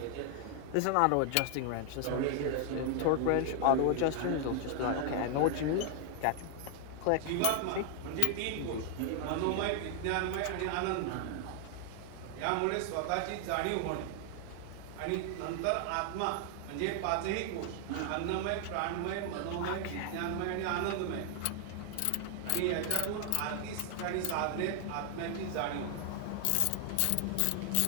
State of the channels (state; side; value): different; both; correlation 0.00